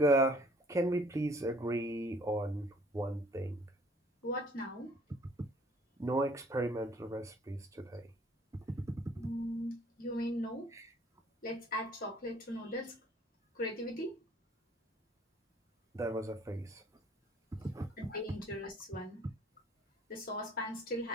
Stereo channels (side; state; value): both; normal; correlation 0.57